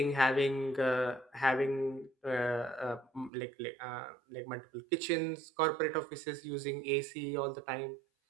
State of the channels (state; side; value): drops out; left; at 3.3 s